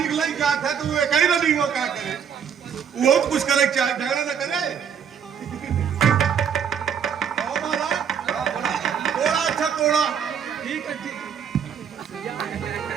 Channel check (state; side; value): quieter; left; 7.7 dB